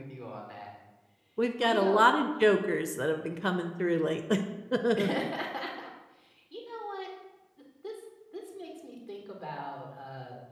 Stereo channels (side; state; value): both; identical; correlation 1.00